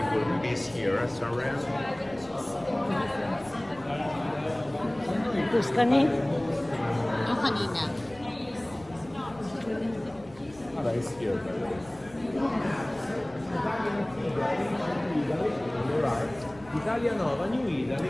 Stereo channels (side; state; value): left; noise; rumble, 23 dB below the sound